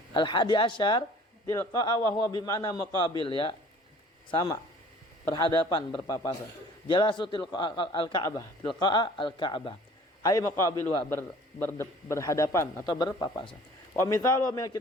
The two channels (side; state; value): both; normal; correlation 0.50